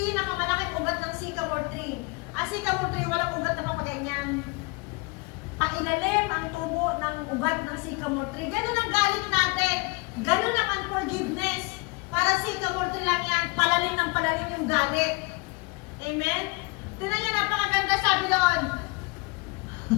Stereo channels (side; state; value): right; quieter; 27.0 dB